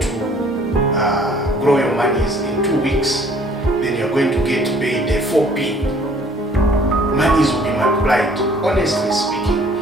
grow your monies in 2 weeks. Then you're going to get paid 4p. Monies will be multiplied. Honestly speaking,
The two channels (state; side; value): normal; both; correlation 0.57